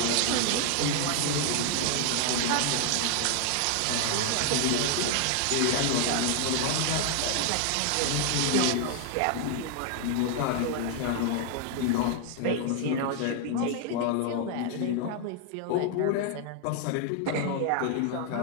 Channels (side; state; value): both; different; correlation 0.00